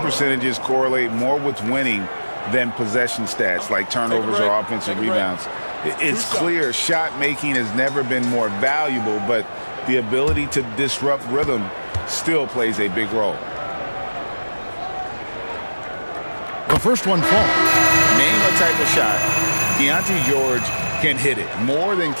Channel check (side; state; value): both; inverted; correlation -1.00